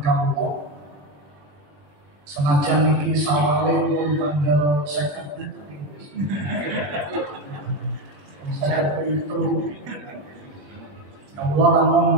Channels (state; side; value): late; left; 20 ms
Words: kawula, senajan niki sawale pun tanggal 50 saya itu Allah